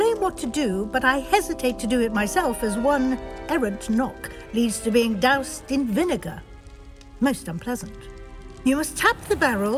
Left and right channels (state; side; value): identical; both; correlation 1.00